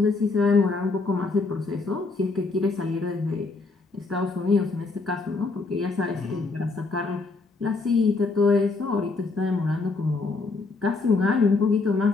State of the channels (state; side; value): quieter; right; 3.9 dB